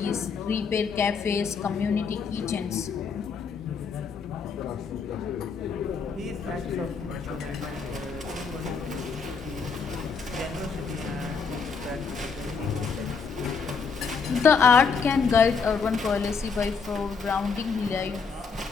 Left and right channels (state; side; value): quieter; right; 5.4 dB